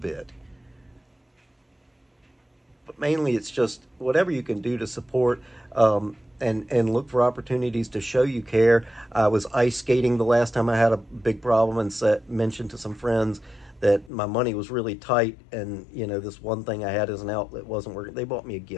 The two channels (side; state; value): right; drops out; at 14.1 s